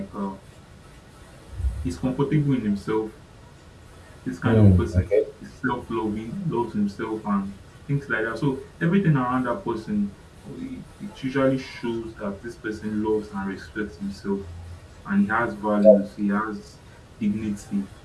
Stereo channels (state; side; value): identical; both; correlation 1.00